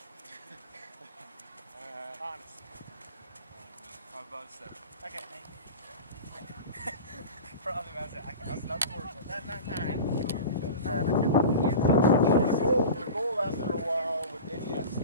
Honestly. I'm about 7. Okay, thank you. Probably about 7. That's not the worst. Not 9. So the goal after a while with any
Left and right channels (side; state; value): both; inverted; correlation -0.32